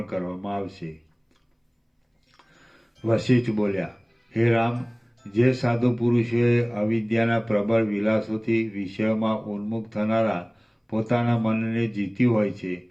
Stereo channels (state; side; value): identical; both; correlation 1.00